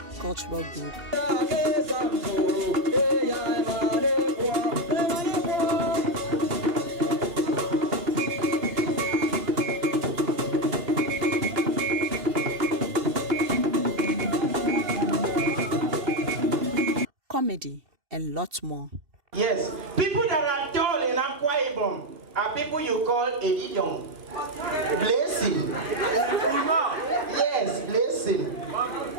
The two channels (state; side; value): late; left; 2.7 ms